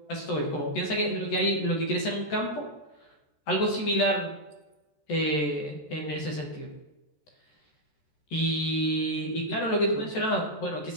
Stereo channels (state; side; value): late; right; 13 ms